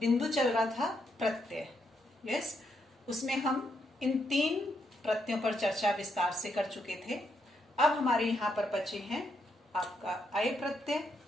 चल रहा था प्रत्यय। यस, उसमें हम इन 3 प्रत्ययों पर चर्चा विस्तार से कर चुके थे। अब हमारे यहाँ पर बचे हैं आपका अय प्रत्यय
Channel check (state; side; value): normal; both; correlation 0.78